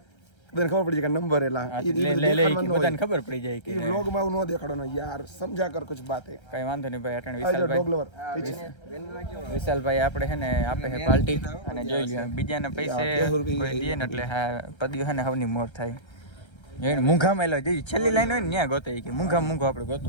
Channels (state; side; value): late; right; 1.3 ms